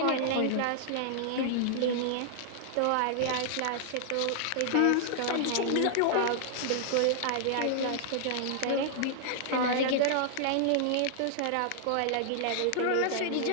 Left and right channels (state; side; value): different; both; correlation -0.01